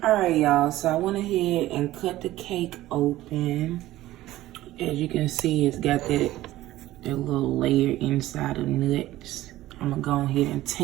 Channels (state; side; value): quieter; left; 15.7 dB